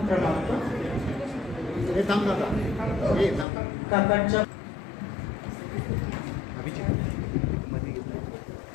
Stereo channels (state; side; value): drops out; right; at 3.5 s